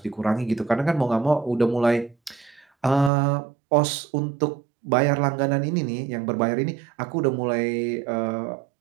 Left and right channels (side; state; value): left; drops out; at 3.1 s